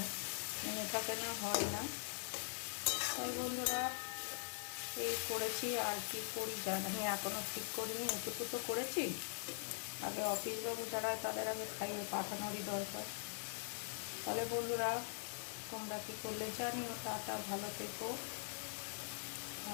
মনে থাকে না, হয় না। তাই বন্ধুরা এই করেছি, আর কি করি জানি এখনও ঠিক করিনি। এটুকু তো করেছি, আগে অফিসবাবু যারা হয় তাদের আগে খাইয়ে পাঠানোরই দরকার। তাহলে বন্ধুরা তোমরা কী করলে জানিও। টাটা, ভালো থেকো।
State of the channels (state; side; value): silent; right; digital silence